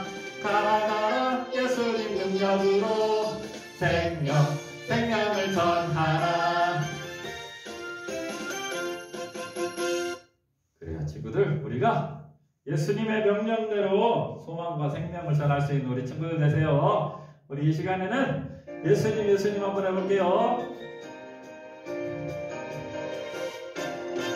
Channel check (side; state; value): both; identical; correlation 1.00